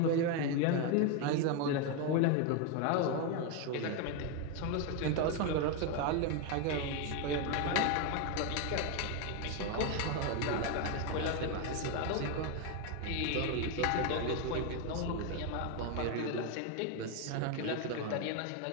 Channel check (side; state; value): both; different; correlation 0.02